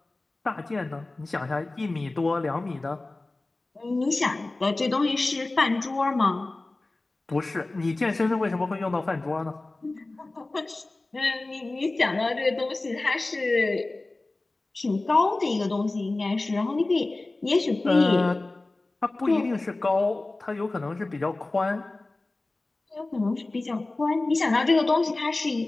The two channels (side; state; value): right; quieter; 3.1 dB